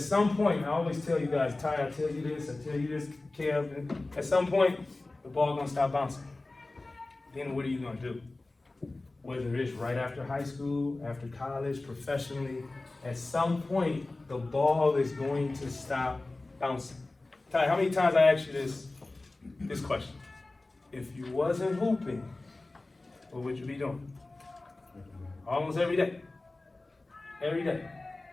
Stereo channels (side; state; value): right; quieter; 3.1 dB